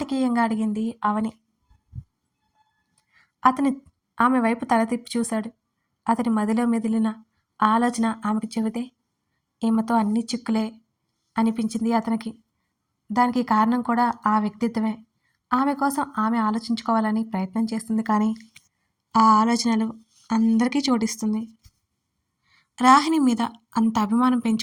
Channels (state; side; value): identical; both; correlation 1.00